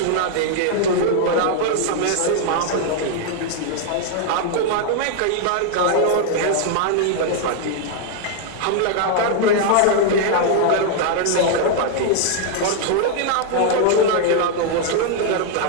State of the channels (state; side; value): different; both; correlation 0.00